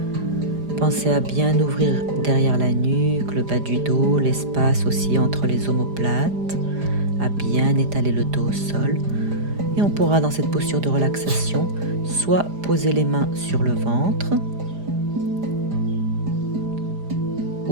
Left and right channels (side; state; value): left; late; 4.9 ms